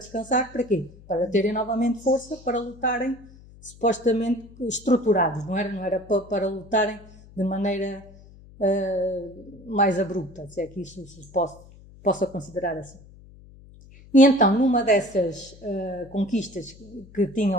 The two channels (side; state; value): left; noise; hum, 22 dB below the sound